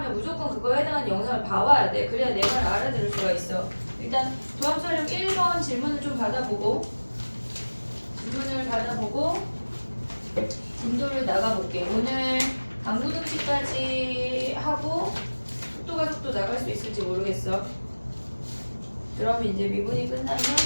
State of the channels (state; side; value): inverted; both; correlation -1.00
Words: 무조건 그거에 해당하는 영상을 봐와야 돼. 그래야 내 말을 알아들을 수가 있어. 일단 도함수활용 1번 질문을 좀 받아보고 진도를 나가볼게. 오늘 강구등식까지 하고 속도 나갈 수 있을지 모르겠어. 그럼 이제 미분이 끝나면